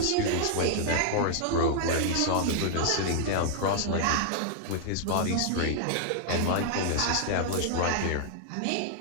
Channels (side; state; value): both; different; correlation -0.01